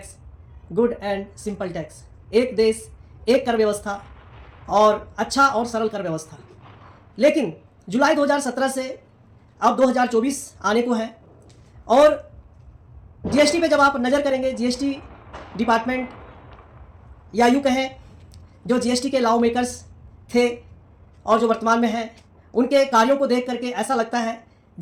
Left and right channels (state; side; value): identical; both; correlation 1.00